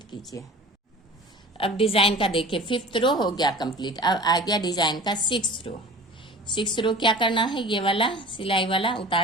कीजिए। अब डिजाइन का देखिए 5th रो हो गया कंप्लीट। अब आ गया डिजाइन का 6th रो। 6th रो क्या करना है, ये वाला सिलाई वाला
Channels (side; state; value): both; normal; correlation 0.40